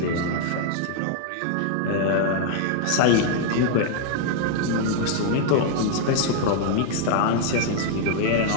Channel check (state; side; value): different; both; correlation 0.00